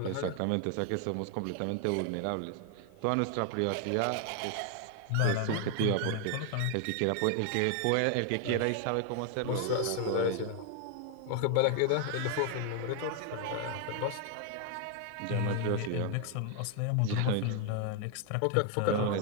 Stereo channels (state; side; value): different; both; correlation 0.00